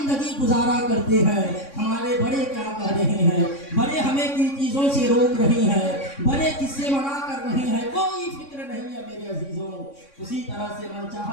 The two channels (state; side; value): late; right; 3.6 ms